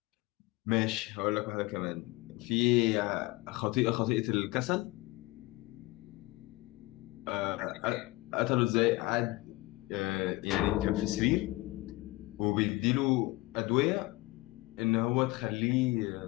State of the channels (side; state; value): right; quieter; 21.4 dB